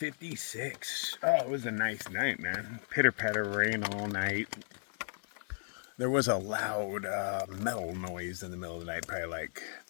Oh, it was a nice night, man. Pitter-patter rain all night. There was a loud metal noise in the middle of the night, probably like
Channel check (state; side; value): silent; right; 55 dB below the other